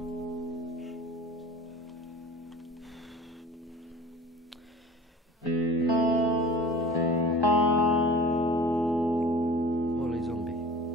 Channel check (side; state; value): both; normal; correlation 0.41